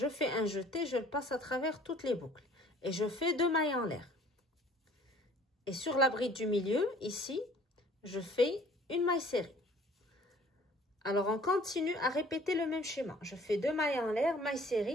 fais un jeté, je le passe à travers toutes les boucles. Et je fais 2 mailles en l'air. Et sur la bride du milieu, ici, je fais une maille serrée. Alors, on continue à répéter le même schéma. Je fais 2 mailles en l'air, maille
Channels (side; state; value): both; normal; correlation 0.53